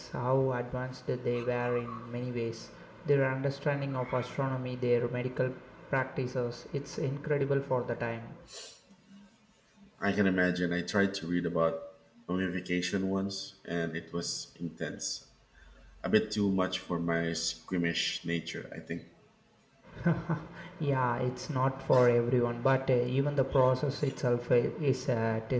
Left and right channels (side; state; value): both; identical; correlation 1.00